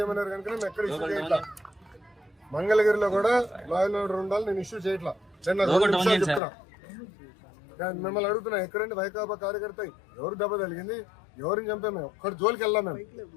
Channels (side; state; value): right; drops out; at 6.4 s